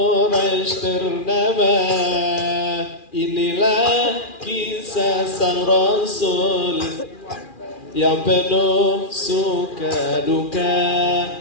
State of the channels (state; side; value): late; right; 2.4 ms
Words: ternama. Inilah kisah sang Rasul yang penuh suka duka.